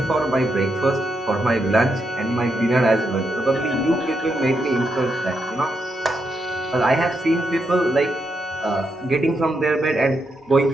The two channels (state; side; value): normal; both; correlation 0.82